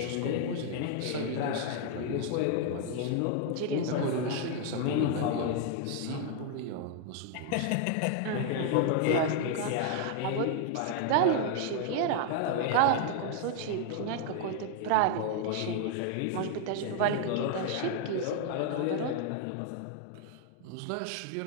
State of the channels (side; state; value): both; different; correlation 0.00